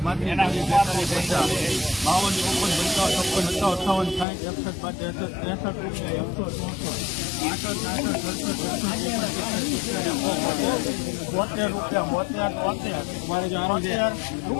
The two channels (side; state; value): right; drops out; at 4.2 s